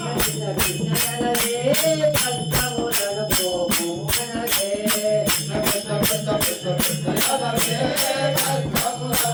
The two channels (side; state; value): both; identical; correlation 1.00